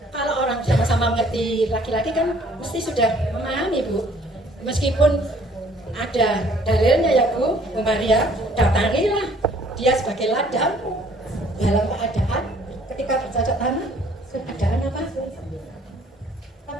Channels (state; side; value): normal; both; correlation 0.59